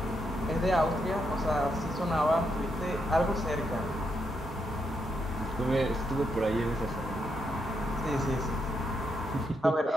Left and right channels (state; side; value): normal; both; correlation 0.80